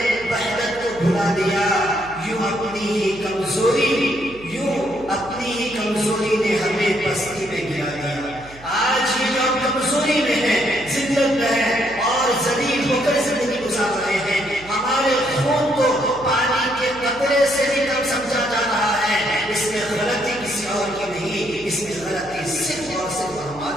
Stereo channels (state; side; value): noise; right; hum, 20 dB below the sound